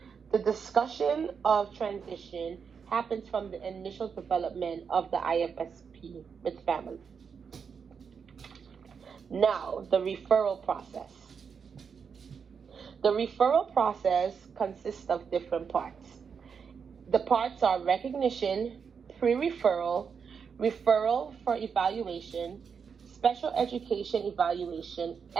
The discussion of transition happens from the initial development of the IFSP with family. Now, the referral process. The referral process consists of different parts. The parts are recognition, pre-referral, referral for evaluation, special education evaluation,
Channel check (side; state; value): left; quieter; 6.3 dB